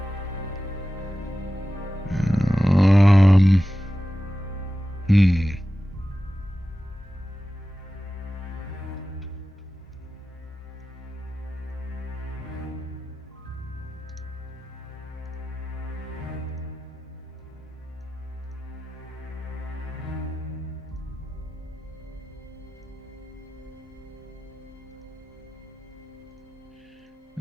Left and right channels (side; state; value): both; normal; correlation 0.94